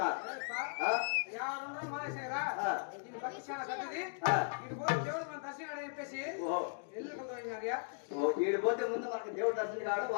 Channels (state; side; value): silent; right; digital silence